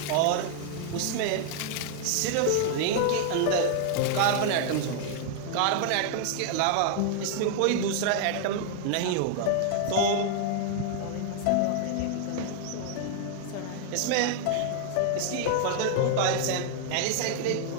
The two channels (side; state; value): both; different; correlation 0.00